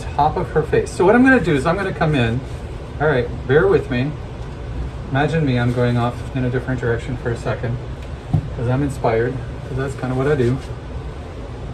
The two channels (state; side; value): identical; both; correlation 1.00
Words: of her face. So what I'm gonna do is I'm gonna come in, all right, bear with me. Imagine me, I'm going off in a different direction for a second because I'm inspired, because that's kind of what I do.